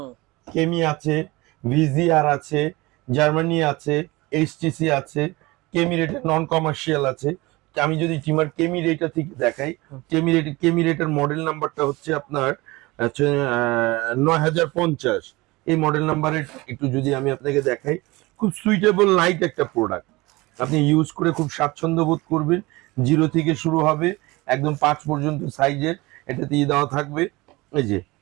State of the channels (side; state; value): left; quieter; 21.9 dB